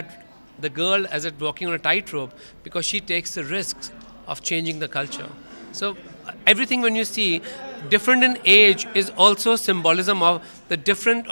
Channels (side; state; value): both; inverted; correlation -1.00